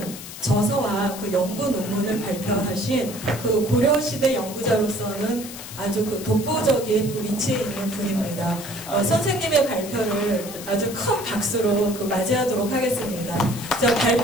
저서와 그 연구 논문을 발표하신 그 고려시대 연구자로서는 아주 그 독보적인 그 위치에 있는 분입니다. 선생님의 발표를 아주 큰 박수로 그 맞이하도록 하겠습니다. 자,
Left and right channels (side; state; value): left; noise; hiss, 12 dB below the sound